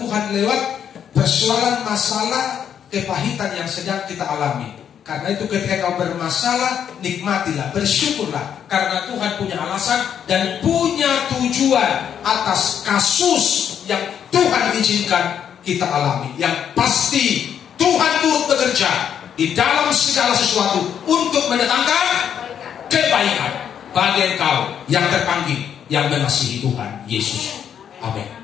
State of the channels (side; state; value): right; quieter; 8.7 dB